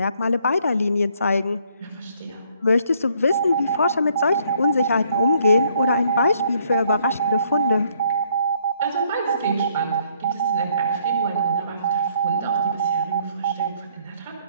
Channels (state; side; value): inverted; both; correlation -0.67